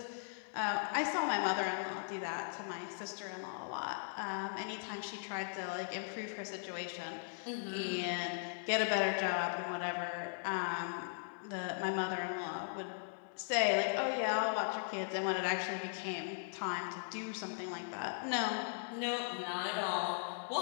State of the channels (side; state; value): right; silent; digital silence